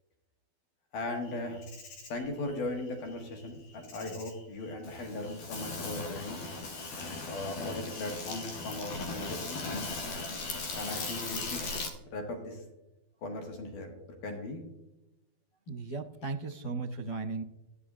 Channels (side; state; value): right; late; 12 ms